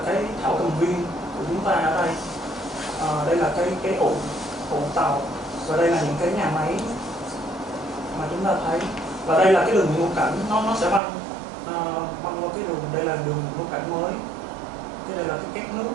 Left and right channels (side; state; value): left; drops out; at 11.0 s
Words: cái thảo cầm viên của chúng ta ở đây. Đây là cái ụ tàu, và đây là những cái nhà máy mà chúng ta thấy. Và đây là cái đường ngũ cảnh, nó sẽ băng qua cái đường, đây là đường ngũ cảnh mới, cái đây là cái két nước.